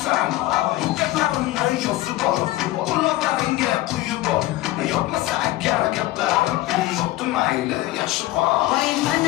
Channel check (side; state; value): right; quieter; 16.8 dB